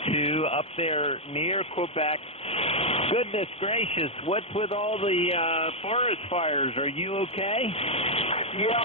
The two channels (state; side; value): late; right; 0.29 ms